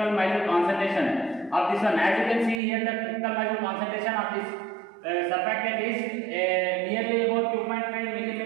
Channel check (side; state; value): left; drops out; at 2.6 s